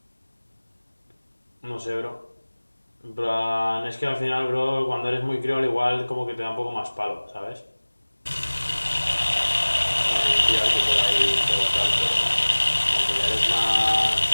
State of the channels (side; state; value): both; inverted; correlation -1.00